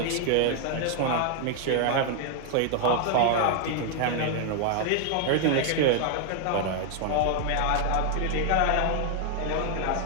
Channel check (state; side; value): different; both; correlation 0.00